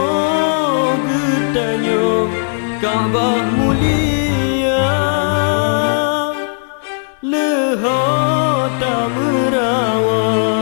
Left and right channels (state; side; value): silent; right; 63 dB below the other